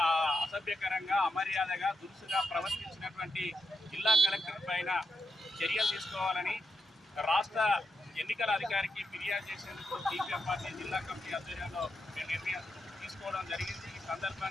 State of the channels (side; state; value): both; normal; correlation 0.85